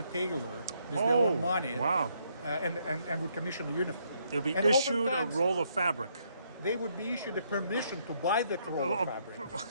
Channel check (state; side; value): inverted; both; correlation -0.73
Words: tailor with their own money. Wow. And would commission a uniform. They'll be And issued a oftentimes roll of fabric. They would be issued a permission to buy that roll of fabric.